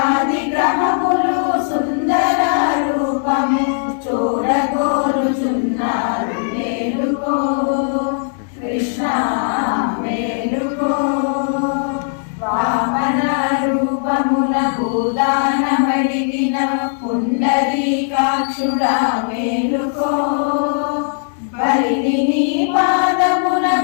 గ్రహములు సుందర రూపము చూడగోరుచున్నారు మేలుకో కృష్ణ మేలుకో వామన రూపముల భూదానమడిగిన పుండరీకాక్షుడా మేలుకో బలిని నీ పాదమున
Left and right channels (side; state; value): right; silent; digital silence